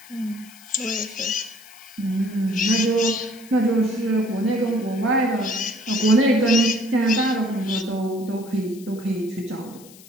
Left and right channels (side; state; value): left; noise; hiss, 22 dB below the sound